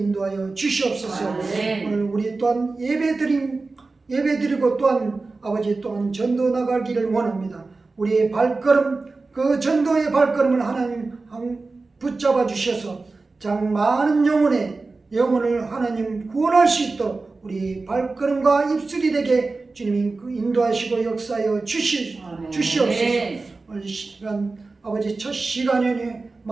주시옵소서. 오늘 우리 또한 예배드리고 또한 아버지 또한 전도 나가기를 원합니다. 우리의 발걸음 그 전도의 발걸음을 하나님 붙잡아 주셔서 장 많은 영혼을 하나님 구원할 수 있도록 우리 발걸음과 입술이 되게 주님이 인도하시고 역사하여 주시옵소서. 오늘 시간 아버지 첫 시간에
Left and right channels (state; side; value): quieter; left; 3.7 dB